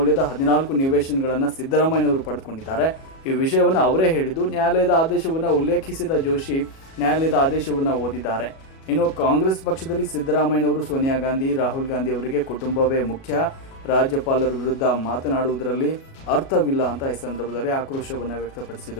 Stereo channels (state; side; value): late; right; 37 ms